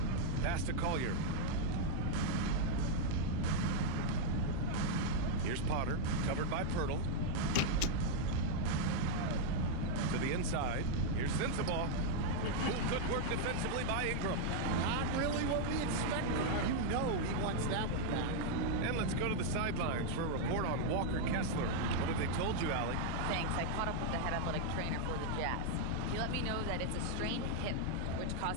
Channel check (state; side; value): different; both; correlation 0.00